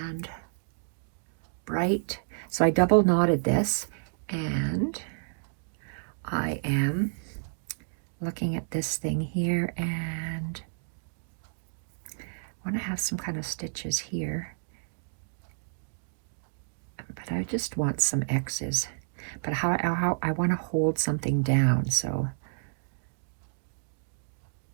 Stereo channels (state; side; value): silent; left; digital silence